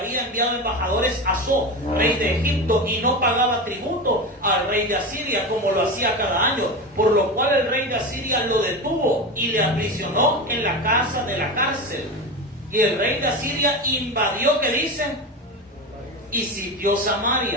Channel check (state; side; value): normal; both; correlation 0.23